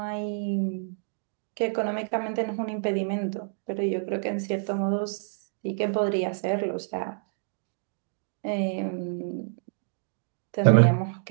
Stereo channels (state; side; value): silent; left; digital silence